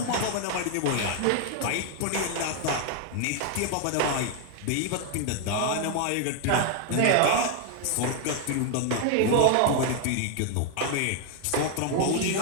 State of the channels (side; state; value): both; different; correlation 0.00